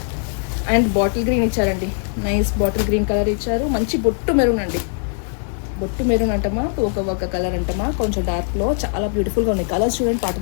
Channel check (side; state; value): right; silent; 56 dB below the other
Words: అండ్ బాటిల్ గ్రీన్ ఇచ్చారండి, నైస్ బాటిల్ గ్రీన్ కలర్ ఇచ్చారు. మంచి బొట్టు మెరూన్ అండి, బొట్టు మెరూన్ అంటమా ఒక కలర్ అంటమా కొంచెం డార్క్లో చాలా బ్యూటిఫుల్గా ఉన్నాయి కలర్స్. చూడండి